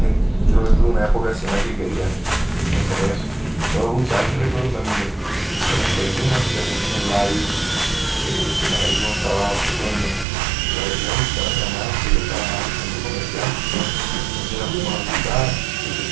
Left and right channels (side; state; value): left; drops out; at 10.2 s